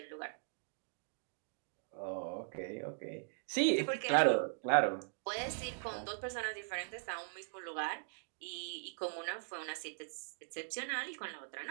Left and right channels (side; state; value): left; silent; digital silence